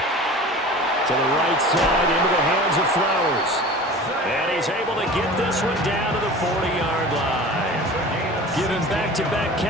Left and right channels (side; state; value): both; normal; correlation 0.38